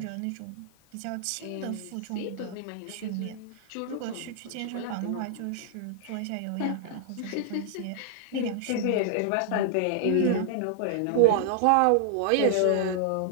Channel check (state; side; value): different; both; correlation -0.01